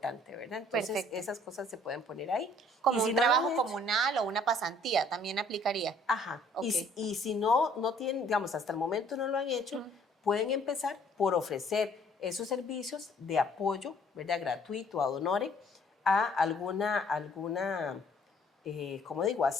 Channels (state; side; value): normal; both; correlation 0.59